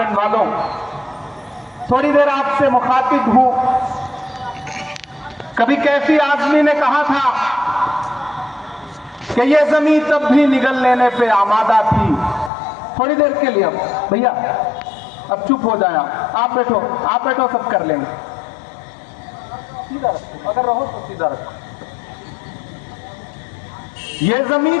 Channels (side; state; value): right; drops out; at 12.5 s